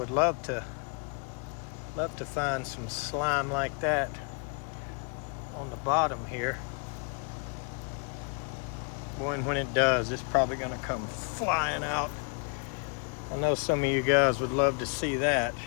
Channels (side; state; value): right; quieter; 36.9 dB